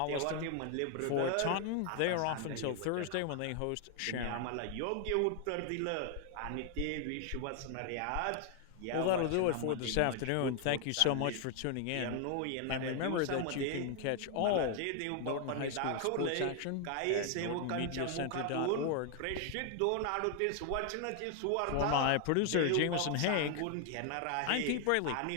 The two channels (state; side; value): different; both; correlation 0.00